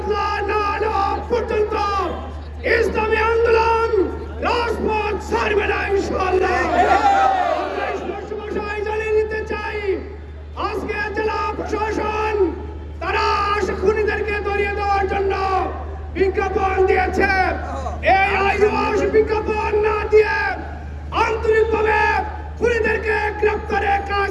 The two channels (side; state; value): both; identical; correlation 1.00